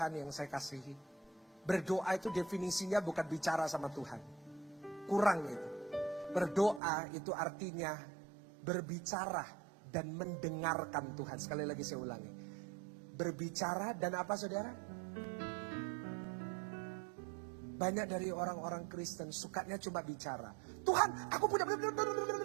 yang saya kasihi. Berdoa itu definisinya bukan bicara sama Tuhan. Kurang itu. Berdoa itu artinya berbicara dan mendengarkan Tuhan. Sekali lagi saya ulangi. Berbicara dan apa saudara? Banyak dari orang-orang Kristen sukanya cuma bicara. Tuhan, aku punya...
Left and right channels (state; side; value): drops out; left; at 6.8 s